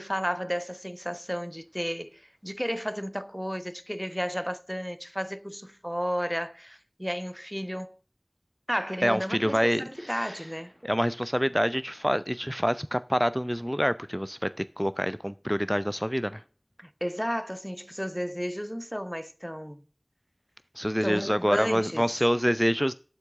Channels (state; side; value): identical; both; correlation 1.00